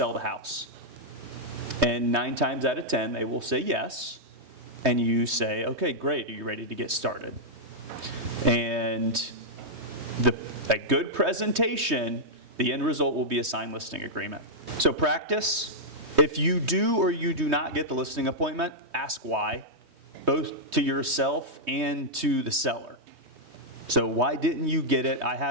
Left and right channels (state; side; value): late; left; 3.2 ms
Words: the house? And 9 times out of 10 they will say yes, and you say, okay, great, are you ready to get started? And a good presentation, the end result will be a signed listing agreement. So practice. If you do or you do not get the listing appointment, ask why, both to yourself and to the seller. So why didn't you get it? I